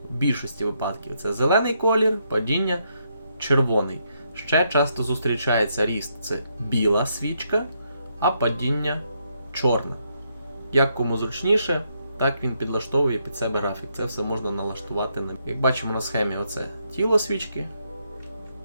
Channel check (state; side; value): inverted; both; correlation -0.77